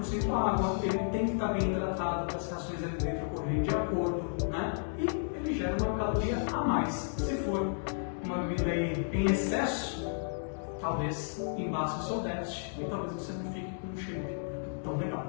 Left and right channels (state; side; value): silent; right; digital silence